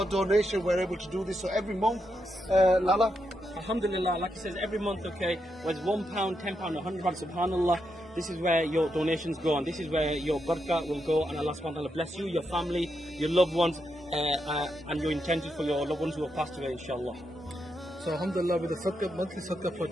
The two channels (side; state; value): both; normal; correlation 0.83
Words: donation, we're able to do this. So every month, Lala? Alhamdulillah, like it says, every month, okay, whether it's £1, £10, £100, subhanallah, this is where your donations go, and this is where your barakah will go, and Allah subhanahu wa ta'ala bless you, your family, your loved ones, and your intentions for your loved ones who have passed away, inshallah. So alhamdulillah, with the monthly Sadaqah